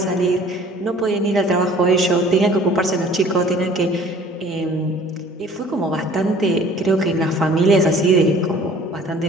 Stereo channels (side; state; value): both; normal; correlation 0.50